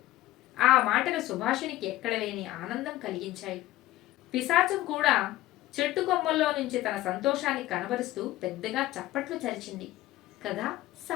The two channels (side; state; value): right; quieter; 16.0 dB